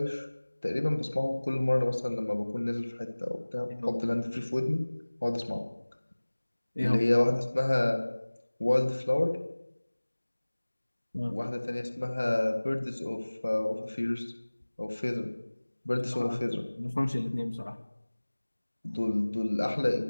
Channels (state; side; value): inverted; both; correlation -1.00